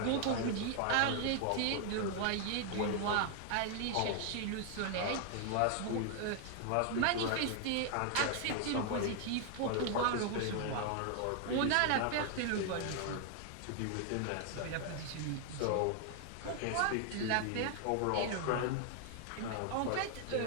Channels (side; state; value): both; different; correlation 0.00